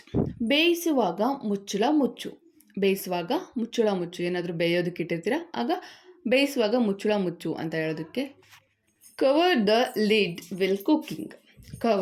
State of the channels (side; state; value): both; identical; correlation 1.00